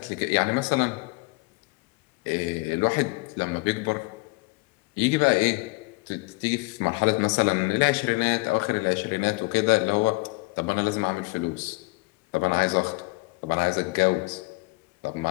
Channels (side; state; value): right; quieter; 25.6 dB